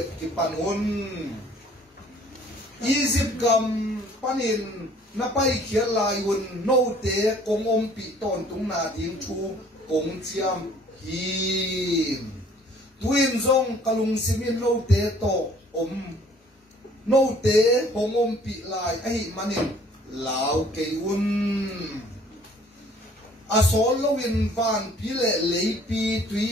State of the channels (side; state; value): both; normal; correlation 0.56